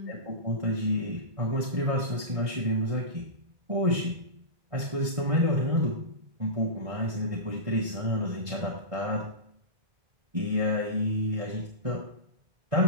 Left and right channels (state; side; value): late; left; 1.6 ms